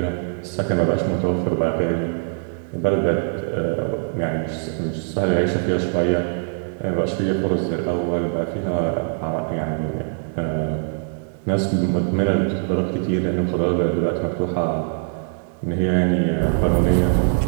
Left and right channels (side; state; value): left; silent; 64 dB below the other